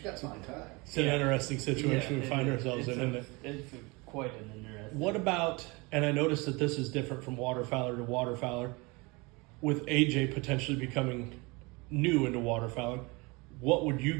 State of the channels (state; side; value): quieter; left; 26.3 dB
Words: got to find time. It's an Yeah. interesting situation we it find is. ourselves It's in, isn't it? It's quite an interesting. What about, and I noticed that this is different from waterfowler to waterfowler, with AJ potentially becoming new into waterfowling, what would you